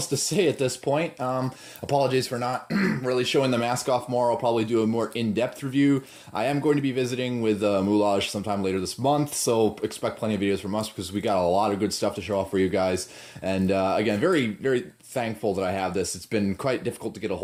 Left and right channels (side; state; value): both; identical; correlation 1.00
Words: to say at this point. Apologies for not really showing the mask off more. I'll probably do a more in-depth review. I am going to be visiting with Moulage sometime later this month, so expect plenty of videos from us because we got a lot of good stuff to show off for you guys. And again, very, very thankful that I have this. It's been quite difficult to get a